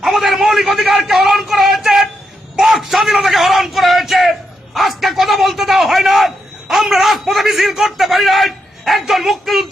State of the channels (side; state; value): both; normal; correlation 0.82